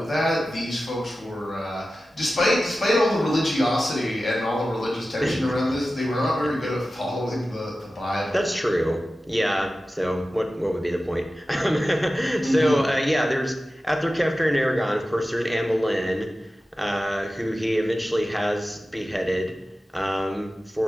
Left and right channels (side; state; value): both; normal; correlation 0.94